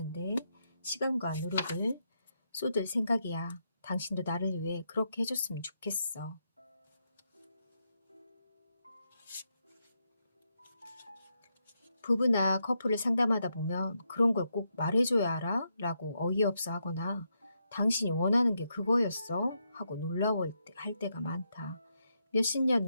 시간과 노력을 쏟을 생각이야. 당신도 나를 위해 그렇게 해줬으면 좋겠어. 부부나 커플을 상담하다 보면 그런 걸 꼭 말해줘야 알아? 라고 어이없어 하거나 당신이 원하는 게 그거였어? 하고 놀라워할 때가 많다. 몇십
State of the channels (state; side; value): inverted; both; correlation -0.81